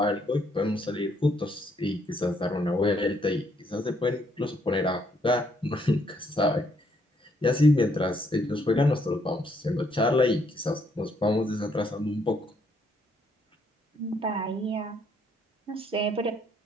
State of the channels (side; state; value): both; normal; correlation 0.71